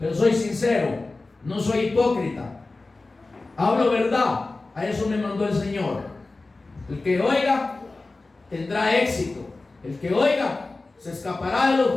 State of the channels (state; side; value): quieter; right; 3.4 dB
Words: soy sincero. No soy hipócrita. Hablo verdad. A eso me mandó el Señor. El que oiga tendrá éxito. El que oiga se escapará de los